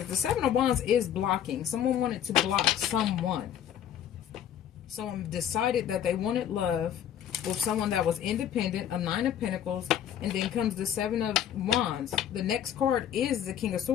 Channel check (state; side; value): quieter; right; 9.9 dB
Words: the Seven of Wands is blocking. Someone wanted to block someone. Someone decided that they wanted love with someone that was independent, a Nine of Pentacles, and then comes the Seven of Wands. The next card is the King of